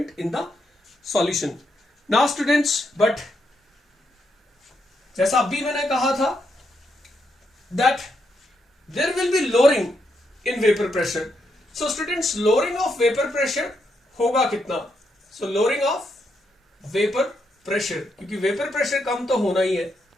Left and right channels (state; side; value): normal; both; correlation 0.80